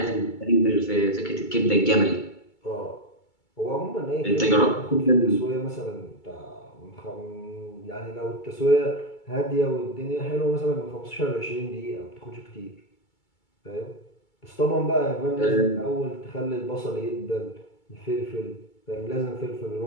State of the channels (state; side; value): late; right; 2.3 ms